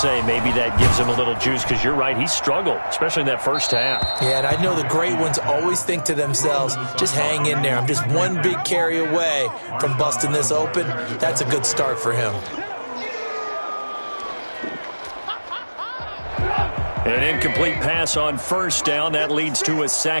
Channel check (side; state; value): both; inverted; correlation -1.00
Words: maybe that gives him a little juice, because you're right, he struggled, especially in that 1st half. Yeah, and I know the great ones always think to themselves, just hang in there. I'm just one big carry away from busting this open. That's a good start for him. An incomplete pass on 1st down. That leads to a